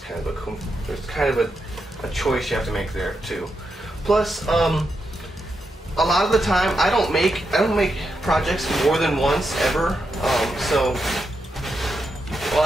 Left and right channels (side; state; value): both; normal; correlation 0.85